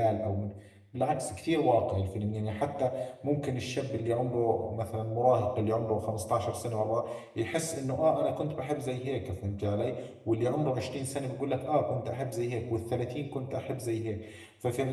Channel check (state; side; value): identical; both; correlation 1.00